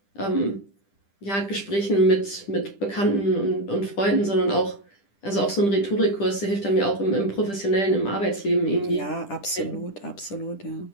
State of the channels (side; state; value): right; late; 10 ms